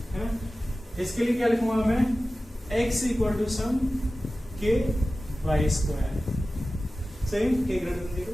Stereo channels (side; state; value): both; normal; correlation 0.95